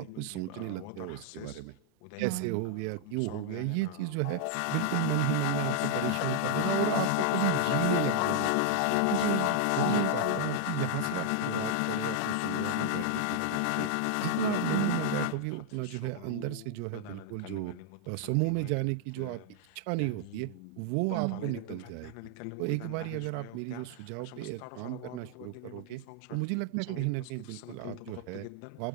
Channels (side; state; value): both; different; correlation 0.00